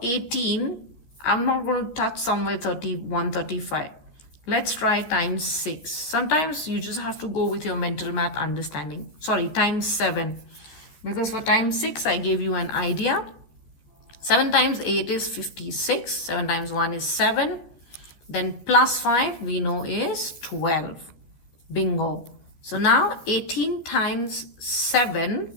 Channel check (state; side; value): late; right; 14 ms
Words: 18, I'm not going to touch somewhere 31, 35. Let's try times 6. Sometimes you just have to go with your mental math understanding. Sorry, times 7. Because for times 6, I gave you an idea. 7 times 8 is 56. 7 times 1 is 7. Then plus 5 we know is 12. Bingo. So now 18 times 7